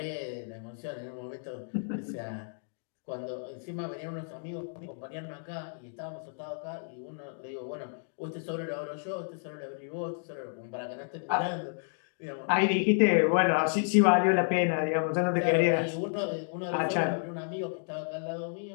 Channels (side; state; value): right; silent; digital silence